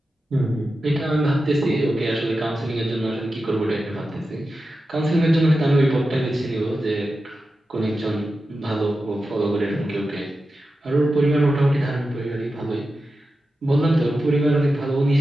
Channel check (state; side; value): normal; both; correlation 0.91